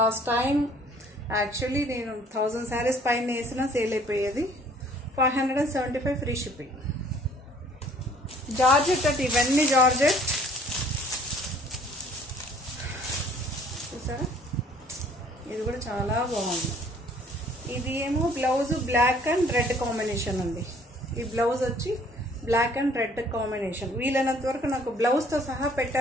టైం యాక్చువల్లీ నేను 1000 శారీస్ పైన వేసినా సేల్ అయిపోయేది. 575 ఫ్రీ షిప్పింగ్. జార్జెట్ అంటే ఇవన్నీ జార్జెట్ చూసారా, ఇది కూడా చాలా బాగుంది. ఇది ఏమో blouse black and red combination ఉంది. ఈ బ్లౌజ్ వచ్చి బ్లాక్ అండ్ రెడ్ కాంబినేషన్. వీలైనంత వరకు నాకు బ్లౌజ్తో సహా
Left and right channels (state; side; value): normal; both; correlation 0.57